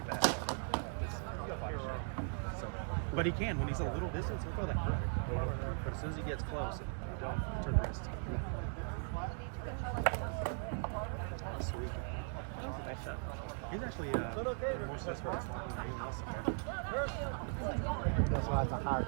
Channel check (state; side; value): silent; left; 52 dB below the other